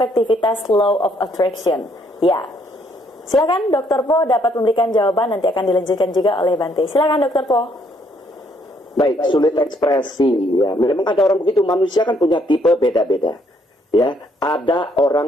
law of attraction? Ya. Silakan Dr. Po dapat memberikan jawaban, nanti akan dilanjutkan juga oleh Bante. Silakan Dr. Po. Baik, sulit ekspresi ya. Memang ada orang begitu, manusia kan punya tipe beda-beda. Ya, ada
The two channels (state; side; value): normal; both; correlation 0.69